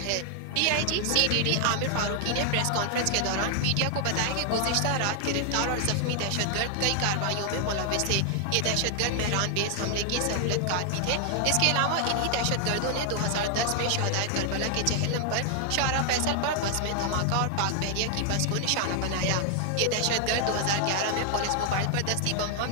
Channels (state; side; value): different; both; correlation 0.00